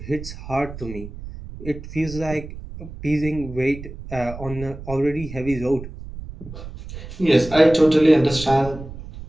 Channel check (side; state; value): right; noise; rumble, 12 dB below the sound